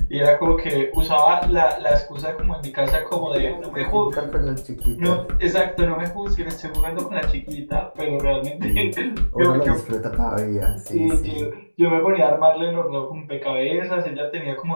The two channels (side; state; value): both; inverted; correlation -1.00